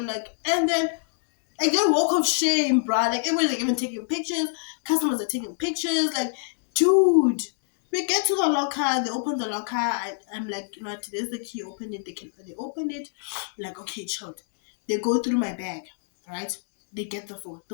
like, and then Like they walk of shame, bruh. Like everyone's like even taking pictures. Customers are taking pictures. Like, dude. We get to the locker. They open the locker. I'm like, you know what? There's the key. Open it. They open it. Like, okay, chilled. They go through my bag, right? They get the phone.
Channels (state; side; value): silent; right; 61 dB below the other